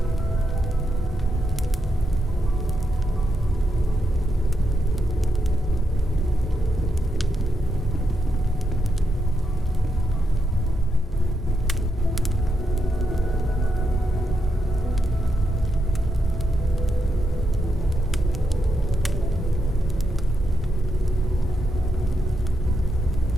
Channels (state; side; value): normal; both; correlation 0.83